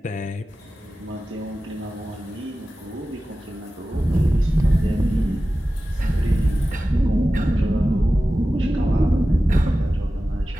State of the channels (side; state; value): both; normal; correlation 0.95